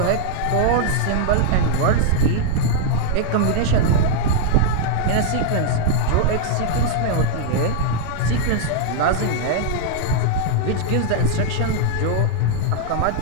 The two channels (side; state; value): both; different; correlation -0.01